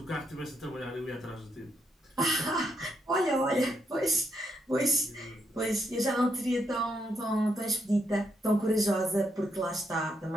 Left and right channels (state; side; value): normal; both; correlation 0.78